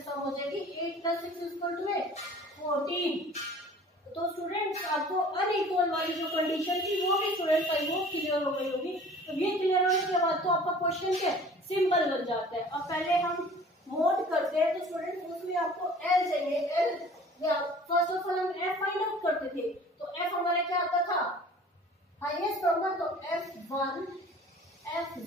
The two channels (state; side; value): normal; both; correlation 0.47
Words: सम हो जाएगी 8 प्लस 6 इक्वल टू 14। तो स्टूडेंट्स आपको अनइक्वल वाली जो कंडीशन थी वो भी स्टूडेंट्स आई वो क्लियर हो गई होगी। तो ये क्लियर होने के बाद तो आपका क्वेश्चन क्या सिंपल बन जाता है। अब पहले हम मोड करते हैं, तो स्टूडेंट्स उसमें आपको एल चाहिए। एल फर्स्ट ऑफ ऑल हम एफ फाइंड आउट करते थे, तो एफ हमारा क्या आता था हाईएस्ट नंबर, तो F1,